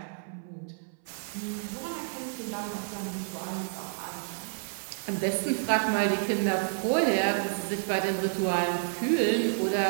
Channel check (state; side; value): silent; left; 58 dB below the other